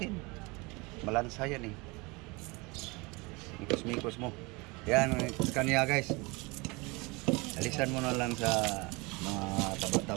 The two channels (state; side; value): quieter; left; 26.3 dB